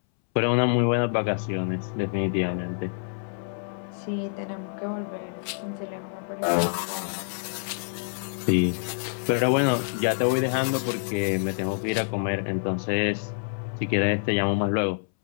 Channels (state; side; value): silent; right; 60 dB below the other